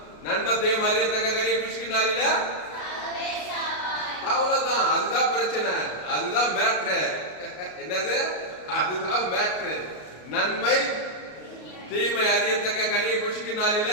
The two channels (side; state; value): right; late; 33 ms